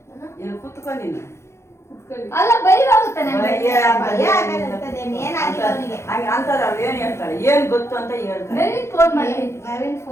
ಕುತ್ಕೊಂಡು ನೀನು ಅಲ್ಲ ಬೈವಾಗುತ್ತೆ ಅಂತಾರ ಅವ್ರು ಏನ್ ಹೇಳ್ತಾರೆ, ಏನ್ ಗೊತ್ತು ಅಂತ ಹೇಳ್ತಾರೆ. ನವೀನ್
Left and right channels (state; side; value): late; right; 0.13 ms